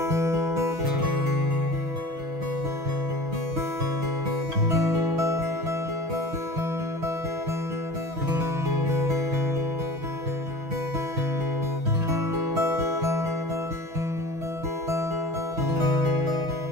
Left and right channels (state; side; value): late; left; 6.2 ms